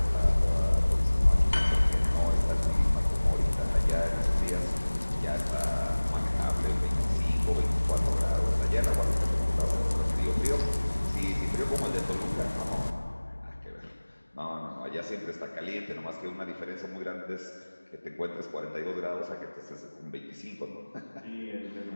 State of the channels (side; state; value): both; inverted; correlation -1.00